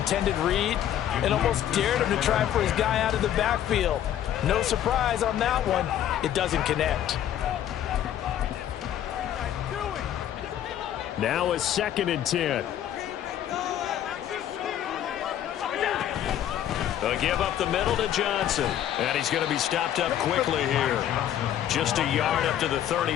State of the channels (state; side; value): quieter; right; 11.0 dB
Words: read and almost dared him to try for his guy out of the backfield. No surprise on that one. It doesn't connect. Now a 2nd and 10. A give up the middle to Johnson. And he's going to be stopped up quickly here. Just a yard up to the